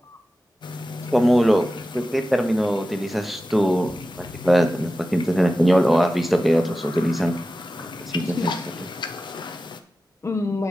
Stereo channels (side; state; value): both; normal; correlation 0.94